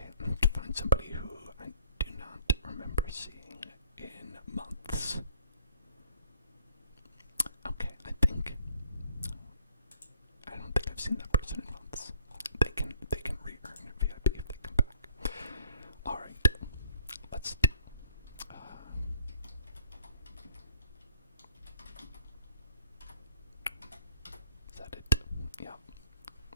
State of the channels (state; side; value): inverted; both; correlation -0.62